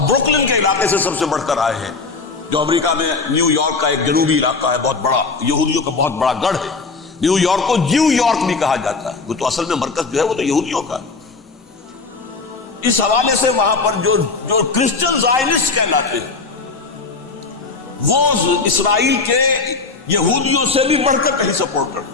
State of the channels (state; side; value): quieter; right; 4.2 dB